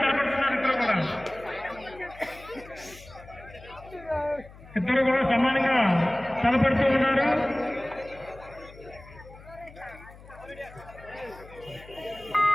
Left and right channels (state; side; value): noise; left; hum, 20 dB below the sound